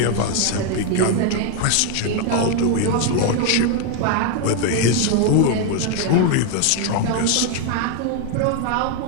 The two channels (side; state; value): both; different; correlation 0.01